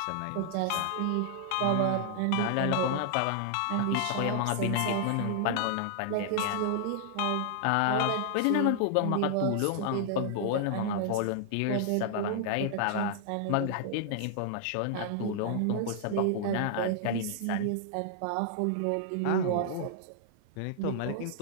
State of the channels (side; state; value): both; different; correlation -0.01